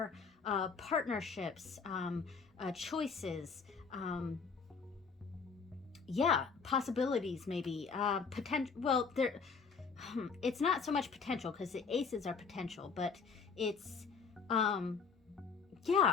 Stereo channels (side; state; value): right; quieter; 5.4 dB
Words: partnerships, choices, yeah, possibilities, maybe potential. Well, there it's not so much potential because the aces are potential, but it's